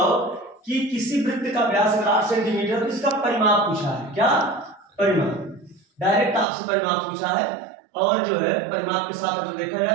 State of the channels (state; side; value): drops out; left; at 6.5 s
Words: कि किसी वृत्त का व्यास अगर 8 सेंटीमीटर तो इसका परिमाप पूछा है। क्या परिमाप? डायरेक्ट आपसे परिमाप पूछा है, और जो है परिमाप के साथ अगर देखा